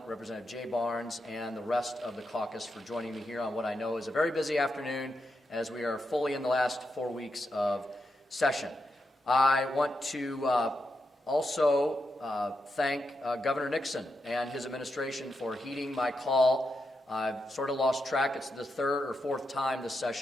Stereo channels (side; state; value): both; normal; correlation 0.85